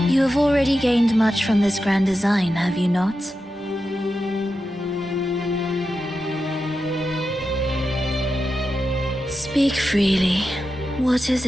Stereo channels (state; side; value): normal; both; correlation 0.90